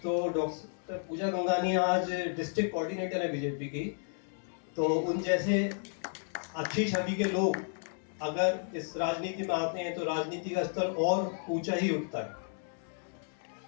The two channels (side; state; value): right; silent; 56 dB below the other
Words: तो डॉक्टर पूजा गंगानिया आज डिस्ट्रिक्ट कोऑर्डिनेटर है बीजेपी की, तो उन जैसे अच्छी छवि के लोग अगर इस राजनीति में आते हैं तो राजनीति का स्तर और ऊंचा ही उठता है।